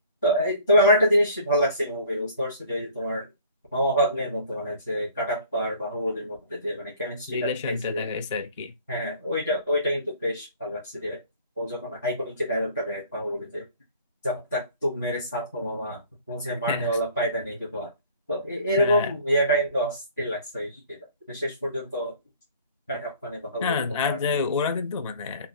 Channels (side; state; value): both; inverted; correlation -0.51